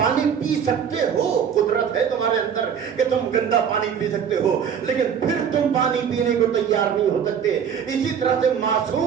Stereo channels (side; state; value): left; quieter; 7.7 dB